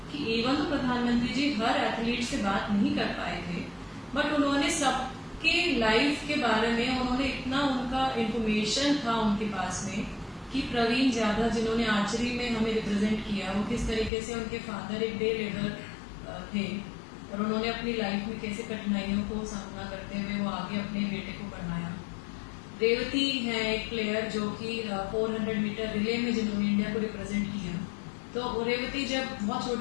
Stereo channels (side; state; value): right; drops out; at 14.1 s